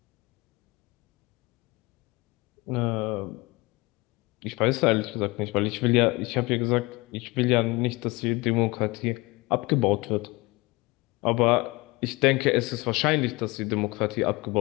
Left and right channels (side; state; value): right; quieter; 23.5 dB